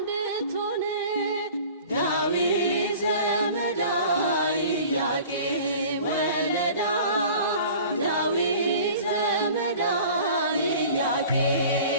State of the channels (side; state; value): both; inverted; correlation -0.44